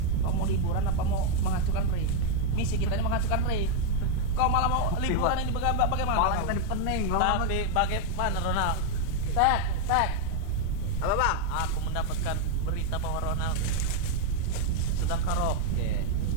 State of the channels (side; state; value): both; different; correlation 0.01